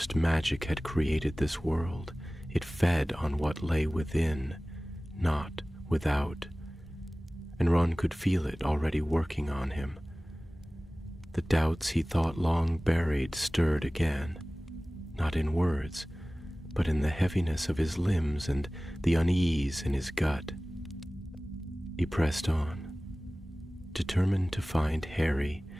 magic had created this world, it fed on what lay within, not without. And Ron could feel it already working on him. The doubts he thought long buried stirred again, not in words, but in the heaviness of his limbs and the unease in his gut. He pressed on, determined to find Harry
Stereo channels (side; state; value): both; normal; correlation 0.98